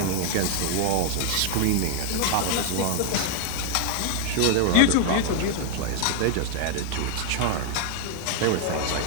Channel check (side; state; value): both; different; correlation 0.00